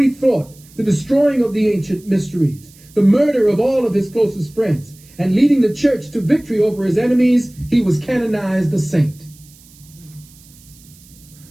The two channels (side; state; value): right; noise; hiss, 25 dB below the sound